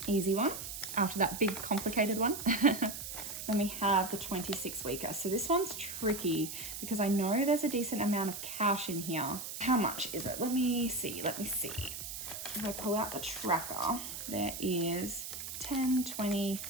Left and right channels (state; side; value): noise; right; hiss, 7 dB below the sound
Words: easy one, after that big complicated one. Then we have the 26 weeker. So this one's tricky because I know there's a decent amount of cash in here. How much is it? Let me see. If I pull out the tracker, there is 10, 20,